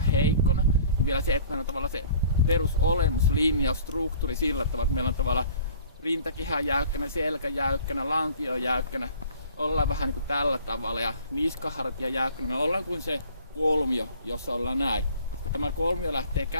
niin vielä se, että meillä on tavallaan se perusolemus, linjaus, struktuuri sillä tavalla, että meillä on tavallaan rintakehä jäykkänä, selkä jäykkänä, lantio jäykkänä. Ollaan vähän niin kuin tällä tavalla ja niskahartia jäykkänä. Me ollaan kuin se kolmio, jossa ollaan näin. Kun tämä kolmio lähtee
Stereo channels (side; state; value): both; inverted; correlation -0.49